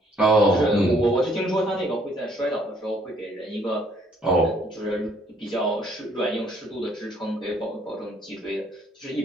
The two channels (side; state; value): both; normal; correlation 0.64